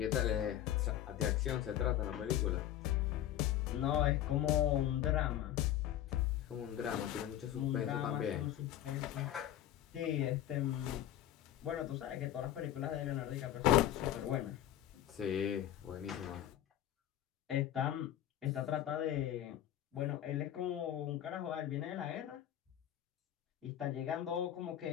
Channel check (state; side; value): quieter; right; 11.9 dB